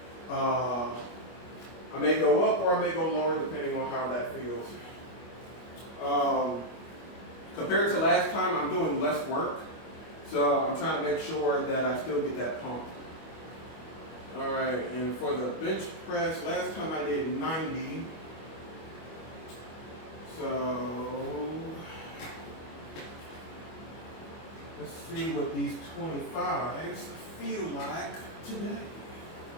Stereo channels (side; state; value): right; late; 25 ms